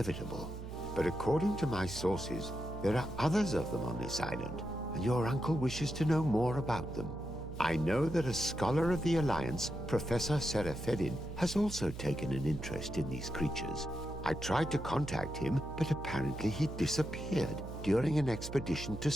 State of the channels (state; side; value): noise; right; hum, 9 dB below the sound